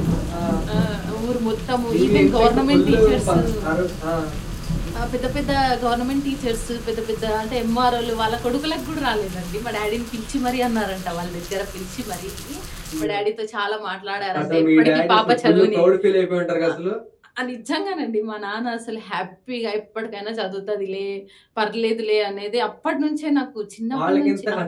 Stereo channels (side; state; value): both; identical; correlation 1.00